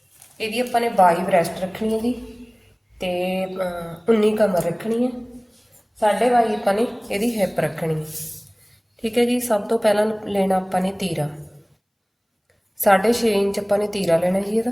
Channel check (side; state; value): both; identical; correlation 1.00